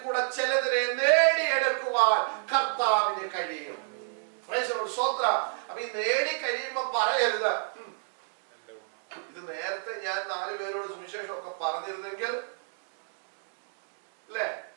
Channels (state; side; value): silent; left; digital silence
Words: കൂടെ ചിലതിനെ നേടിയെടുക്കുവാൻ കർത്താവിന് കഴിയും. അപ്പൊ ഈ നേടി കഴിയുമ്പോ പറയരുത്, ഇത് നേരത്തെ ഞാൻ 4 പേരോട് സുവിശേഷം ഒക്കെ പറഞ്ഞിരുന്നെങ്കിൽ, അല്ലേ?